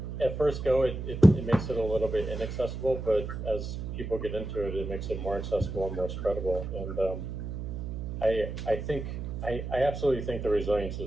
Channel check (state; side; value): noise; right; hum, 6 dB below the sound